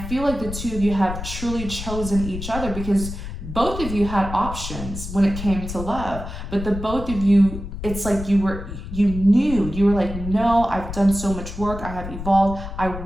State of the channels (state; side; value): noise; left; rumble, 8 dB below the sound